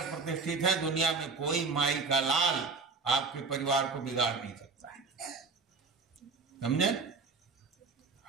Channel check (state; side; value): quieter; left; 4.3 dB